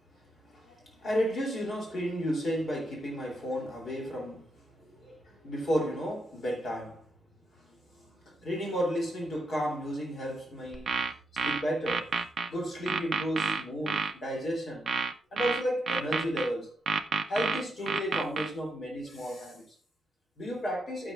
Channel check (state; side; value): normal; both; correlation 0.81